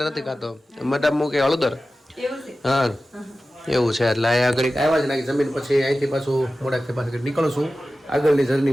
નથી ખાતો મટા મૂકે હળદર એવું છે હા એવું છે એટલે અહીંયા આગળ આવ્યા છે ને જમીન પછી અહીંથી પાછું મોડાથી પાછું નીકળું છું આગળની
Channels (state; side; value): normal; both; correlation 0.95